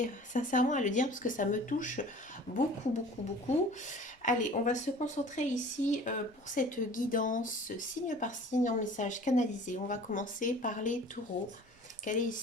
sincèrement à le dire parce que ça me touche beaucoup, beaucoup, beaucoup. Allez, on va se concentrer ici pour cette guidance signe par signe en message canalisé. On va commencer par les taureaux. Quel est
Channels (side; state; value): both; normal; correlation 0.45